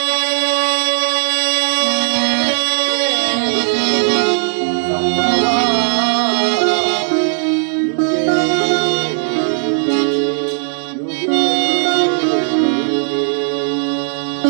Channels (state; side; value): silent; left; digital silence